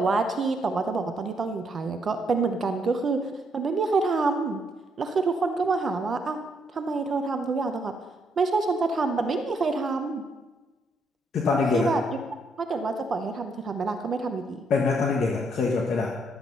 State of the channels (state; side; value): normal; both; correlation 0.73